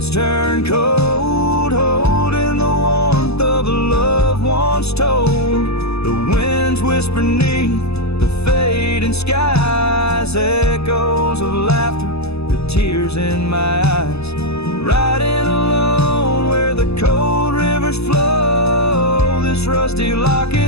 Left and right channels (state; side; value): late; right; 0.79 ms